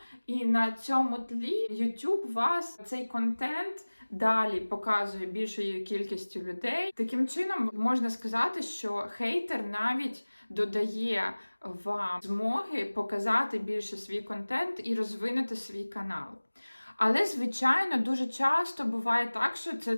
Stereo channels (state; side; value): inverted; both; correlation -1.00